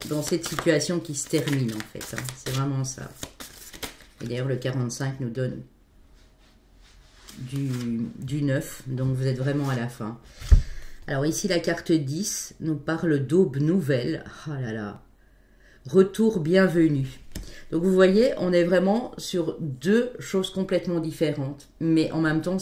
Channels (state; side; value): identical; both; correlation 1.00